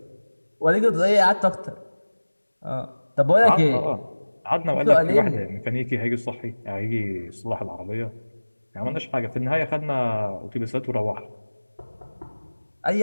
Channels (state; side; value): inverted; both; correlation -1.00